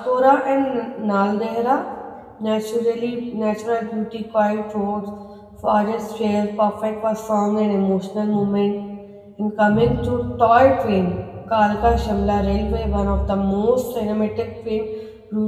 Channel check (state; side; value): identical; both; correlation 1.00